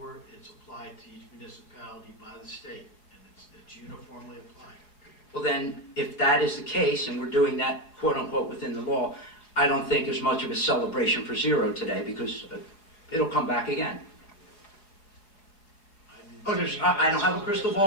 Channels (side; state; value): right; late; 4.9 ms